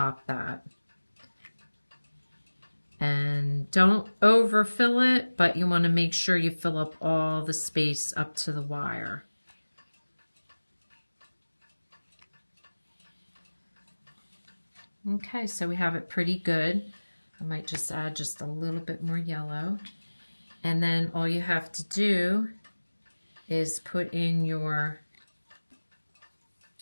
that. And don't overfill it, but you want to make sure you fill up all the space up to the wire. Okay, so we have it pretty good. I might just add just a little bit more yellow. And then all you have to do is put in your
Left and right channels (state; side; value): inverted; both; correlation -1.00